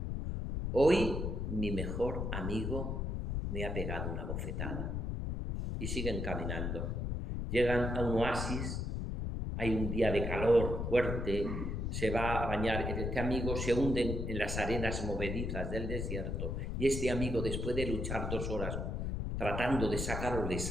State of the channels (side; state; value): left; noise; rumble, 2 dB below the sound